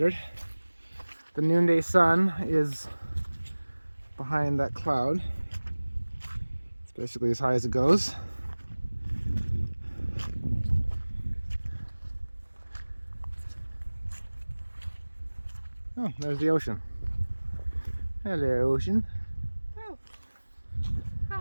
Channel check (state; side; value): inverted; both; correlation -1.00